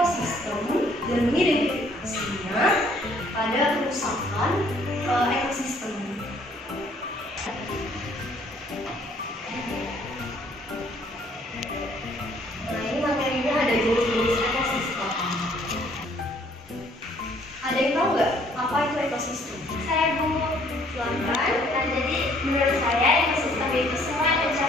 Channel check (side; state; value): both; normal; correlation 0.62